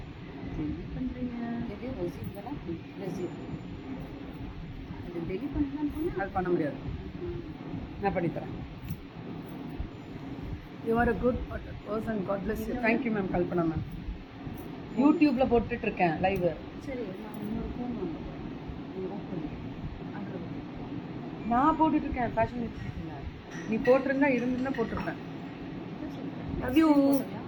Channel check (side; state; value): both; identical; correlation 1.00